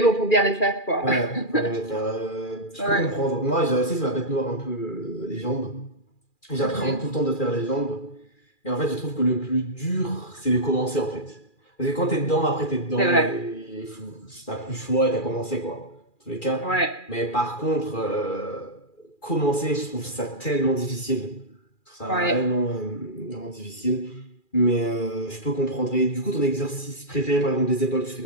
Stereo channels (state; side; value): late; right; 2.4 ms